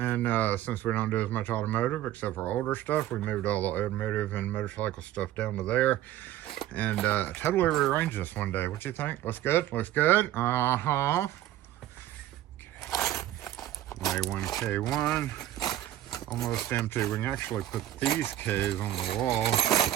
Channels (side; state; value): left; quieter; 13.4 dB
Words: since we don't do as much automotive except for older stuff, we moved all the automotive and motorcycle stuff down to there, and totally rearranged this one day. What you think? Looks good? Looks good? Uh-huh. Okay. A1, K1. Almost empty. We can actually put these K's on the wall